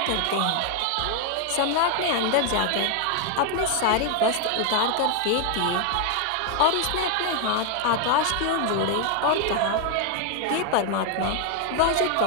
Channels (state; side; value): different; both; correlation 0.00